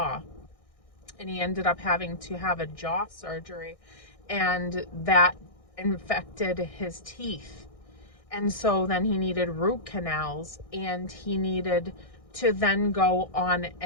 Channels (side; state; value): right; late; 1.6 ms